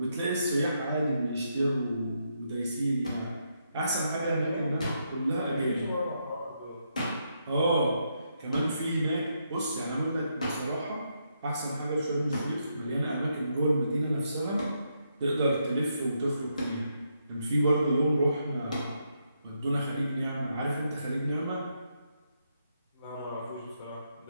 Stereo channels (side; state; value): both; inverted; correlation -0.79